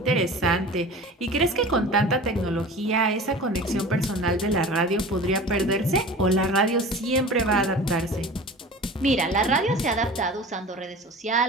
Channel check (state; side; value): normal; both; correlation 0.38